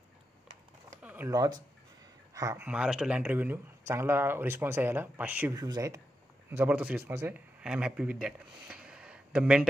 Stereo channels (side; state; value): both; normal; correlation 0.87